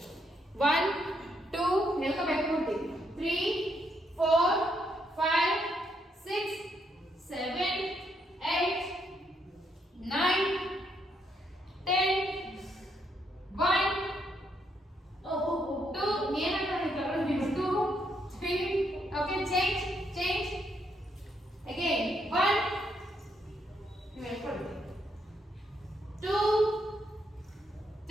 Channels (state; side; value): normal; both; correlation 0.76